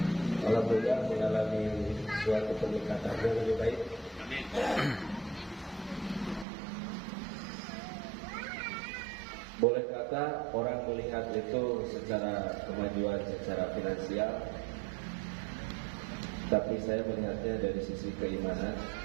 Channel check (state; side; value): drops out; left; at 6.5 s